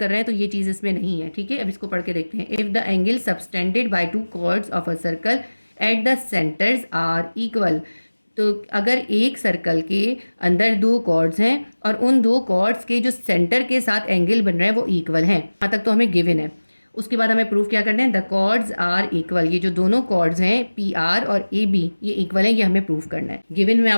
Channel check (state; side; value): inverted; both; correlation -1.00